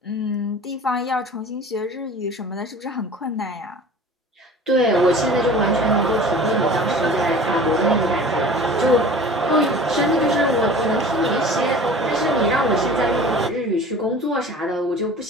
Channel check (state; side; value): normal; both; correlation 0.42